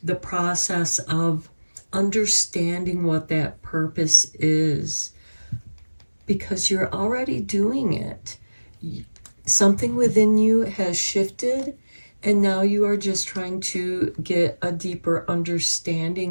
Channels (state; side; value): inverted; both; correlation -1.00